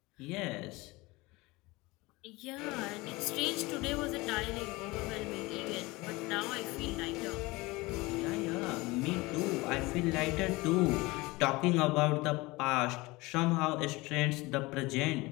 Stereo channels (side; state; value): right; quieter; 22.3 dB